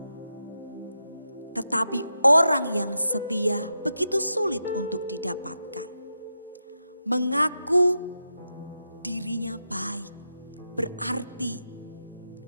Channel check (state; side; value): inverted; both; correlation -0.88